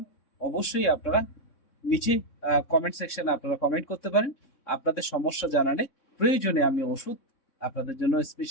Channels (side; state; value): right; late; 3.6 ms